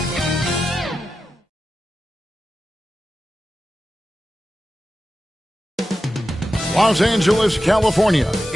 Los Angeles, California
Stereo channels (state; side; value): normal; both; correlation 0.92